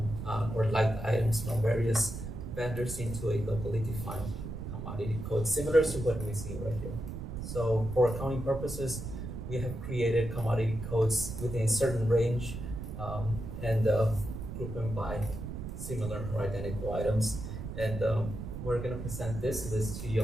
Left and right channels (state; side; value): noise; right; rumble, 7 dB below the sound